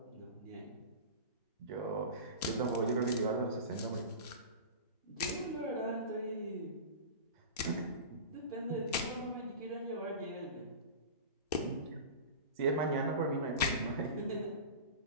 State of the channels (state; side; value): inverted; both; correlation -0.31